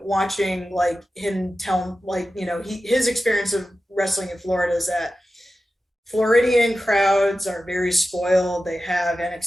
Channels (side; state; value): both; normal; correlation 0.93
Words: watching like him tell like his experience of wrestling in Florida is that Floridian crowds are very spoiled. They have